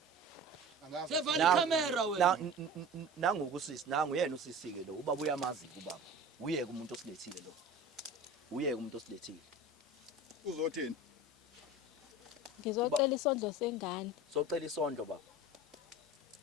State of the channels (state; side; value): normal; both; correlation 0.36